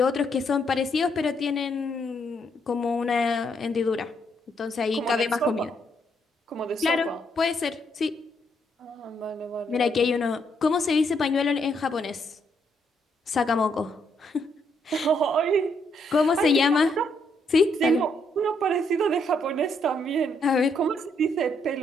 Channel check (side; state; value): both; normal; correlation 0.74